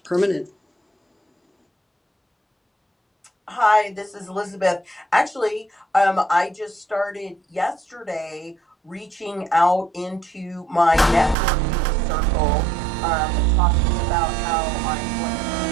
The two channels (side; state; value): left; drops out; at 11.4 s